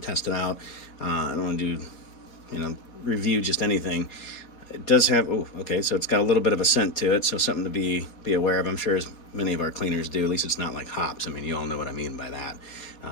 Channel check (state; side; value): late; right; 4.3 ms